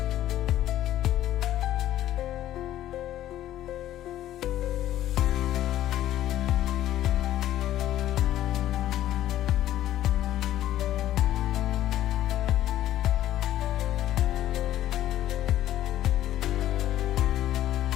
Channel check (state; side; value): quieter; right; 13.0 dB